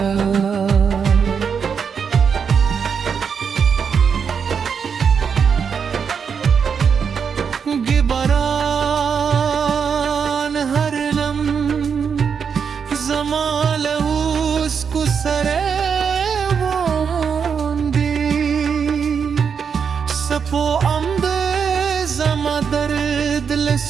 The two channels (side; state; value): left; quieter; 6.6 dB